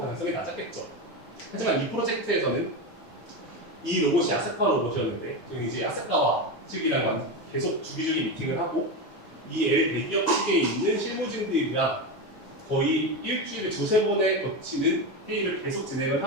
낮았겠죠. 하지만 이 프로젝트에서는 이 로봇이 아세카 로봇이었는데 저희는 이제 아세카와 측이랑 계속 주기적인 미팅을 하고 이 대기업 측에 있는 실무진들이랑 거의 일주일에 두세 번에 거치는 회의를 계속 진행을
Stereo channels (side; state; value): both; normal; correlation 0.16